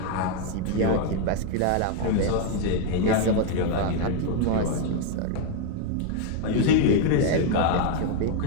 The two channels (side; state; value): both; different; correlation 0.00